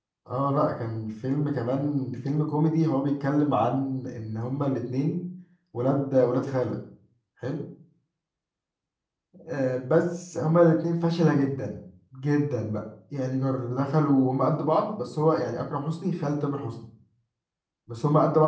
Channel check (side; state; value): both; identical; correlation 1.00